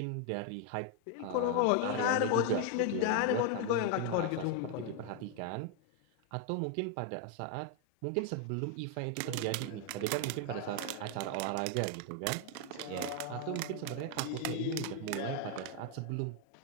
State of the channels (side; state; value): both; different; correlation 0.01